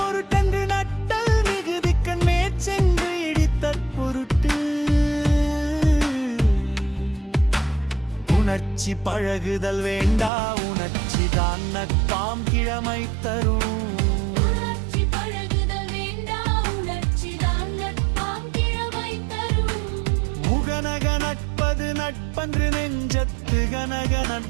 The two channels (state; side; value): drops out; left; at 10.3 s